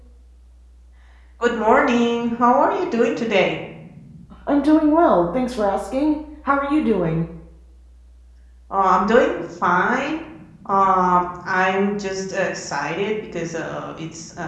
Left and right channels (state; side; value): identical; both; correlation 1.00